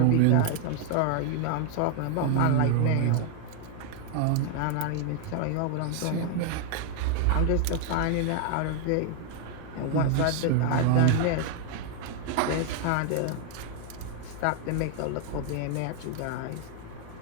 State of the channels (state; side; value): different; both; correlation 0.00